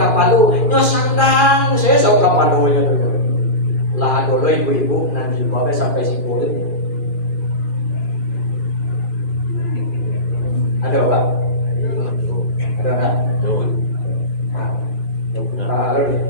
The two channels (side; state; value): right; late; 2.4 ms